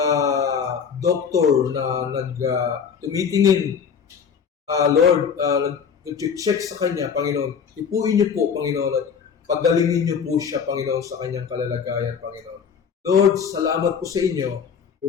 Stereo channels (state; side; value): quieter; right; 6.8 dB